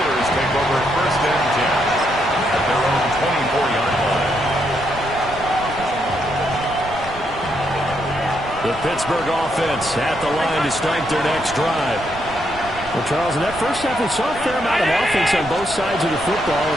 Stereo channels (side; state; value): right; noise; rumble, 15 dB below the sound